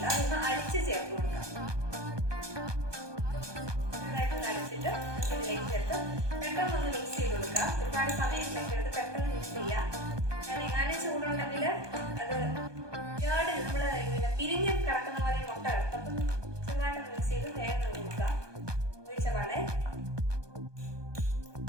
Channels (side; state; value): left; late; 1.2 ms